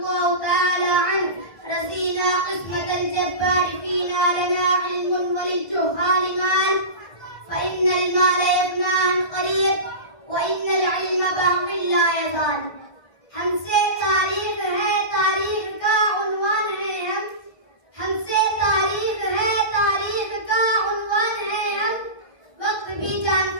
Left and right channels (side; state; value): right; late; 1.6 ms